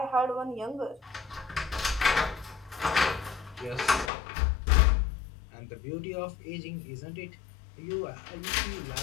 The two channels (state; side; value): drops out; right; at 4.1 s